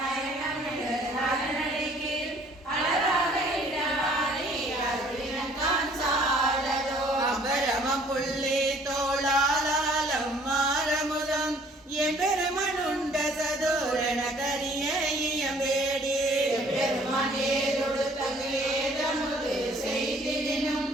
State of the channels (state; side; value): normal; both; correlation 0.57